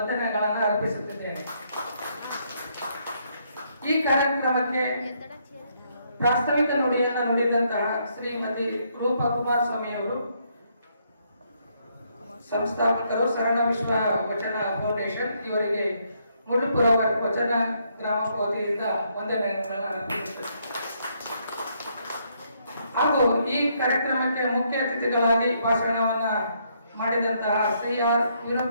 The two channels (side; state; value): both; inverted; correlation -0.73